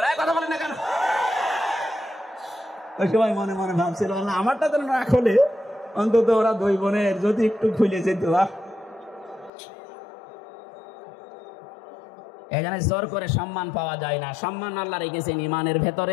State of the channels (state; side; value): drops out; right; at 9.5 s